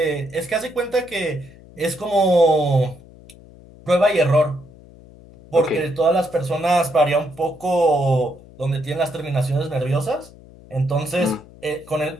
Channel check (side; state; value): left; noise; hum, 22 dB below the sound